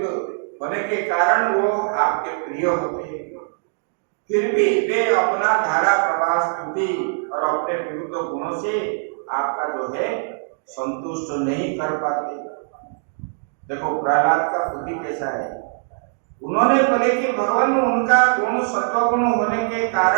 होने के कारण वो आपके प्रिय होते हैं, फिर भी वे अपना धारा प्रवाह स्तुति और अपने विरुद्ध गुणों से आपका जो है संतुष्ट नहीं कर पाते। देखो प्रहलाद का बुद्धि कैसा है, उन्होंने बोले कि भगवान उनका गुण सत्व गुण होने के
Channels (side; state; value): left; silent; digital silence